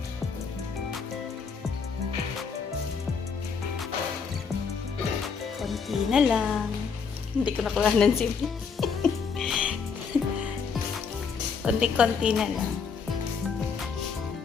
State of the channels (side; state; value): right; quieter; 5.8 dB